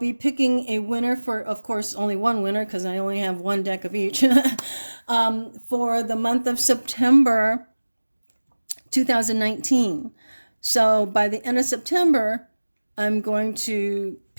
picking a winner for, of course, only one winner because I only have one deck of each for the month of September 2019. So by the end of September, I'm going to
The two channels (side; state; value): both; inverted; correlation -1.00